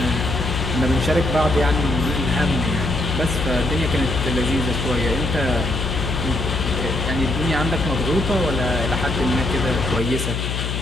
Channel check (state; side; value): noise; left; hum, 2 dB below the sound